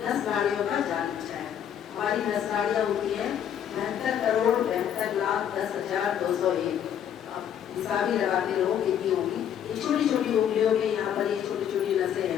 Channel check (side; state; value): right; quieter; 9.4 dB